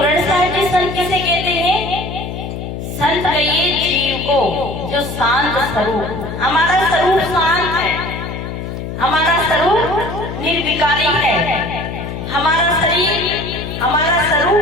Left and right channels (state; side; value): noise; left; hum, 7 dB below the sound